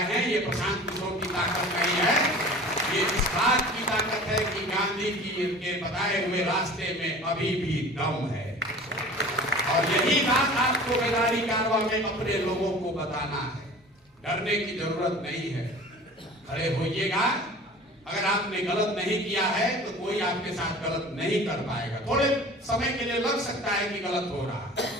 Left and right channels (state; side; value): normal; both; correlation 0.41